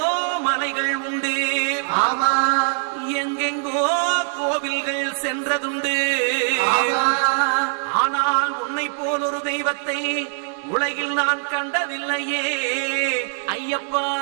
மலைகள் உண்டு, எங்கெங்கோ கோவில்கள் சென்றதுண்டு. ஆனால் உன்னை போல் ஒரு தெய்வத்தை உலகில் நான் கண்டதில்லையே ஐயப்பா.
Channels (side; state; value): left; silent; 64 dB below the other